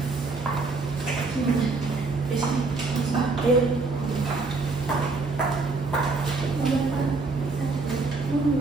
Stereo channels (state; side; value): quieter; left; 3.9 dB